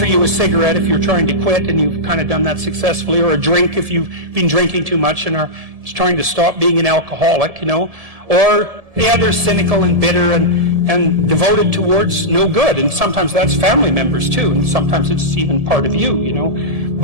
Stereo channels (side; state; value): left; late; 1.7 ms